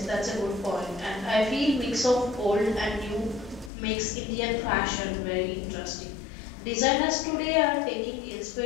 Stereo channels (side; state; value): right; drops out; at 3.7 s